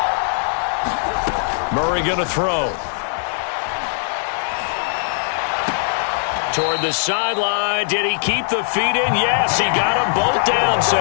Murray going to throw. Toward the sideline. Did he keep the feet in? Yes, he got them both down,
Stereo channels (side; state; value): right; silent; 66 dB below the other